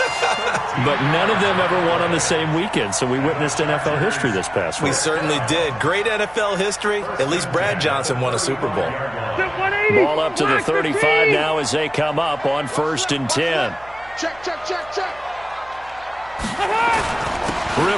But none of them ever won on the same weekend, so we witnessed NFL history this past week. We certainly did. Great NFL history. At least Brad Johnson won a Super Bowl. Ball up to the 35 now as they come up on 1st and 10. Check.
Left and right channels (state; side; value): noise; right; hum, 24 dB below the sound